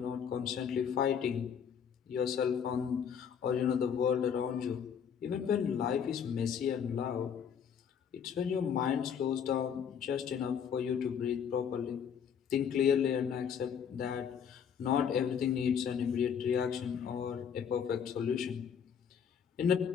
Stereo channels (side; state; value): right; quieter; 7.6 dB